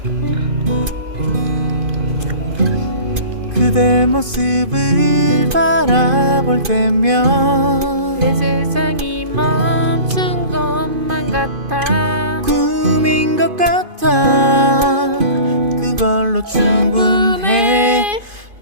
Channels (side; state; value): left; late; 2.5 ms